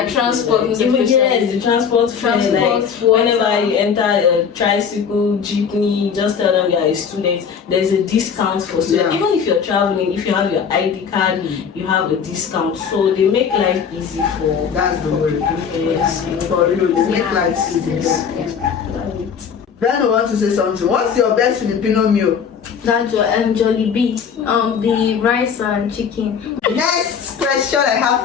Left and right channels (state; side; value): quieter; right; 6.9 dB